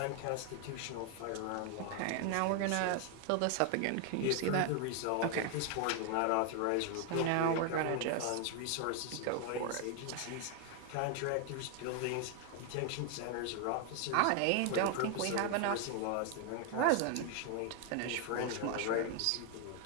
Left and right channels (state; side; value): different; both; correlation 0.00